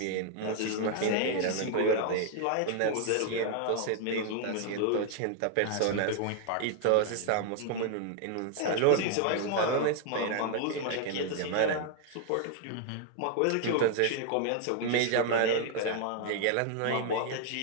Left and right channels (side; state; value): both; different; correlation 0.00